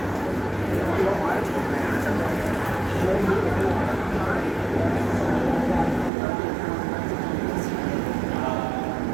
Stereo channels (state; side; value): drops out; left; at 6.1 s